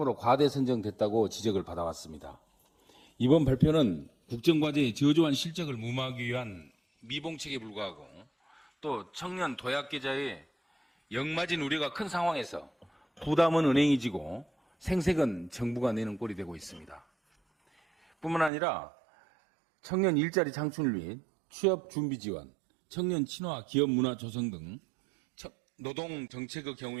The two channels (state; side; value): drops out; left; at 18.5 s